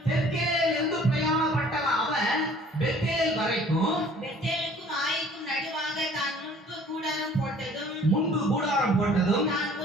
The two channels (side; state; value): both; normal; correlation 0.52